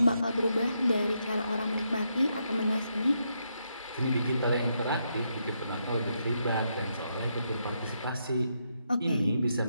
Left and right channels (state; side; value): inverted; both; correlation -0.80